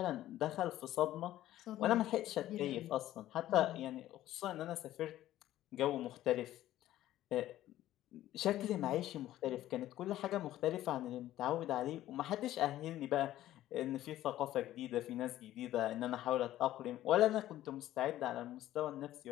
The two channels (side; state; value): right; quieter; 13.9 dB